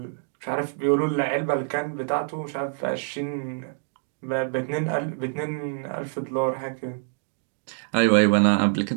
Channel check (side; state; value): left; silent; digital silence